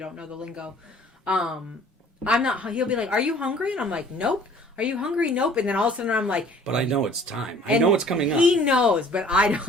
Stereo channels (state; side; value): normal; both; correlation 0.53